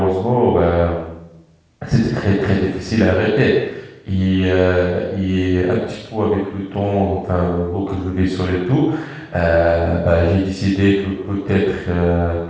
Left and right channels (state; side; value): identical; both; correlation 1.00